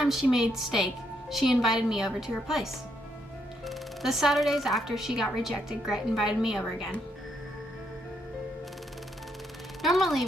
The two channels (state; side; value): normal; both; correlation 0.75